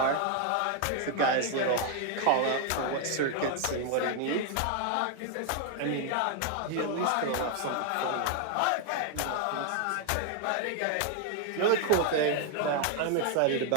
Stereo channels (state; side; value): different; both; correlation 0.00